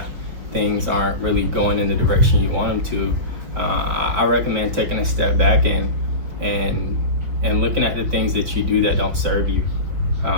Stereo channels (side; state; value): left; late; 5.3 ms